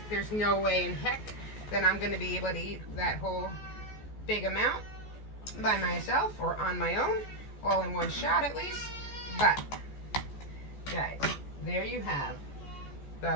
there's no way in heck that I'm going to be able to eat that whole big amount by myself or on my own, all in one shot at least. But, guys, there you have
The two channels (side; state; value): right; late; 14 ms